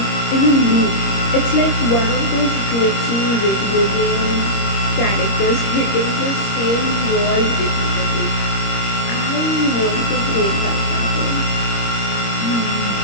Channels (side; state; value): right; late; 26 ms